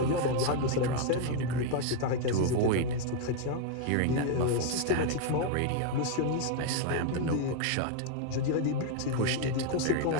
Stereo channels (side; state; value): both; different; correlation 0.00